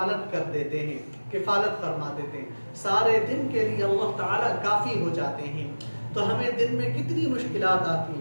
کر دیتے ہیں، کفالت فرما دیتے ہیں، سارے دن کے لیے اللہ تعالیٰ کافی ہو جاتے ہیں۔ تو ہمیں دن میں کتنی مشکلات آتی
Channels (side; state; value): both; inverted; correlation -1.00